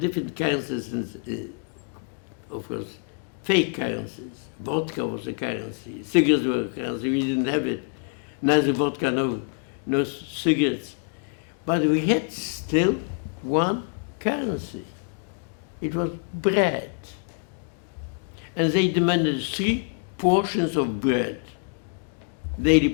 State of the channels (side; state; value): right; quieter; 36.0 dB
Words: currencies, of course, fake currencies. Vodka was a currency, cigarettes were a currency, we didn't have it. Neither vodka, no cigarettes. But we had still one currency. It was bread. And they demanded 3 portions of bread, daily